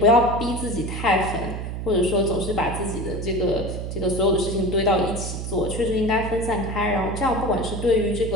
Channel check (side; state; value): right; noise; hum, 5 dB below the sound